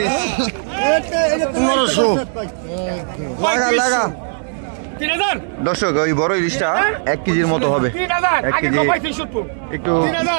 1500 লাগা। দর্শক, ওই বড় ইলিশটা 1 কেজির মতো হবে। 1 কেজি একটু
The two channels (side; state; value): left; silent; digital silence